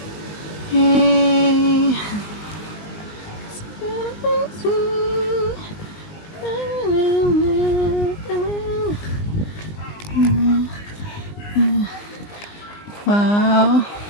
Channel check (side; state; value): right; late; 19 ms